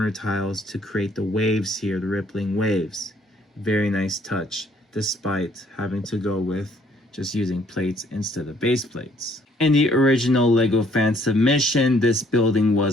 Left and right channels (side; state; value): both; normal; correlation 0.63